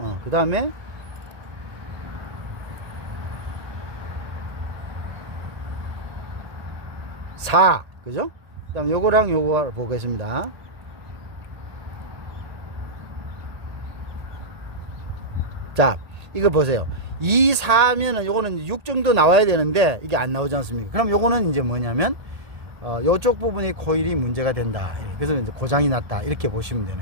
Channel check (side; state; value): left; late; 1.8 ms